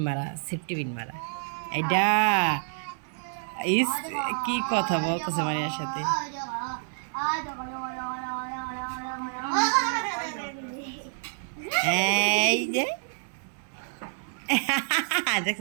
মারা, সেফটি পিন মারা। এইটা ইস কি কথা বলতেছে মারিয়ার সাথে। এই যে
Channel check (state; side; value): silent; left; 59 dB below the other